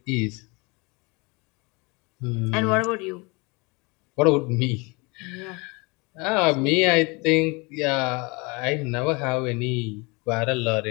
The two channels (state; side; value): quieter; right; 28.0 dB